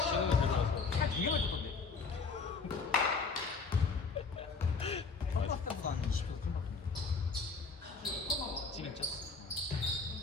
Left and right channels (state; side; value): quieter; right; 4.6 dB